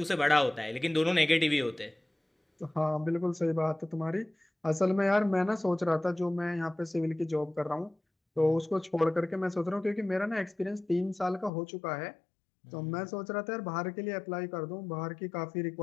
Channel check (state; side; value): drops out; right; at 11.5 s